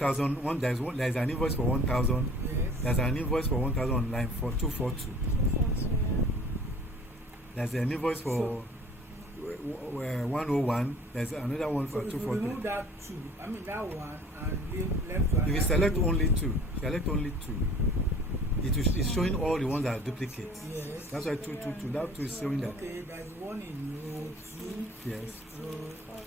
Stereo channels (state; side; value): normal; both; correlation 0.48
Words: There is an invoice for 1,000. yes. There's an invoice for 1,000 on line for 242. There's an invoice for 101. There's another one So for if you 240. remove that 2, I mean that one, and leave left one. If you select only 2, it's showing all the ones that are duplicates. Yes. That's why 222. That 2 is showing that. Okay, there's one in row 2. Yes. Row